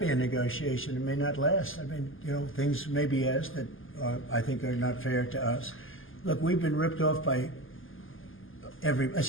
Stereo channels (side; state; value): right; late; 0.59 ms